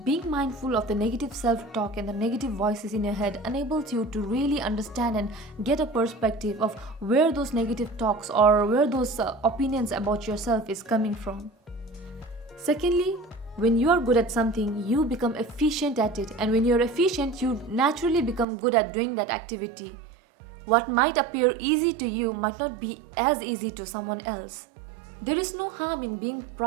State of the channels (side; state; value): left; drops out; at 18.4 s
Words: Being mindful of the negative self-talk and the negative voices in your head enables you to really understand and get a perspective of where those negative talks or where those opinions about yourself is coming from. Secondly, when you are good at something, you become efficient at it, and when you're efficient, you naturally become good at doing that activity. What might appear easy to you might not be as easy to someone else. There is no harm in being